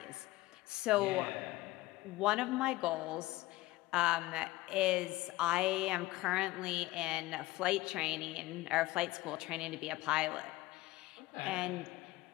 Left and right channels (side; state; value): right; quieter; 18.5 dB